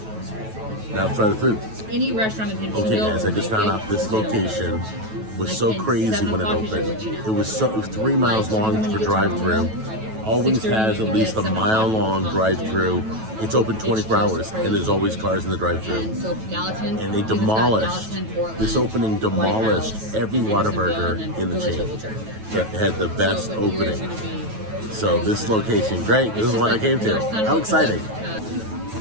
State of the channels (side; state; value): left; late; 9.2 ms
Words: Now let's try the food. Any restaurant in Nashville. Okay, guys, I just found out this location was so crazy when it opened. It was 3 miles long for drive-thru. Always has at least a mile-long drive-thru. It's open 24 hours, and there's always cars in the drive-thru. And they demolished, this opening demolished every Whataburger in the chain. It had the best opening. So this location, great. This is what I came to. How exciting.